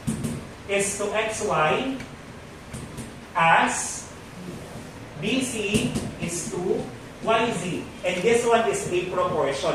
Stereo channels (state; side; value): identical; both; correlation 1.00